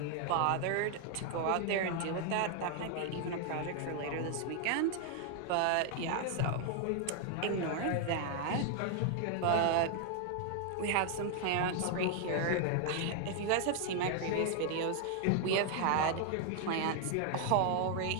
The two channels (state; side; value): different; both; correlation 0.00